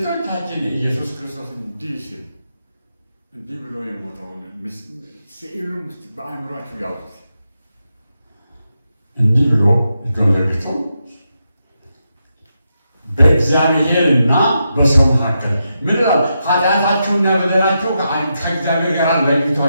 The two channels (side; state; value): both; inverted; correlation -0.85